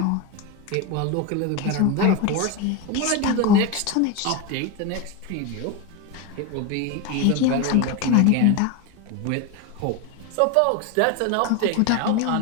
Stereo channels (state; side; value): different; both; correlation 0.03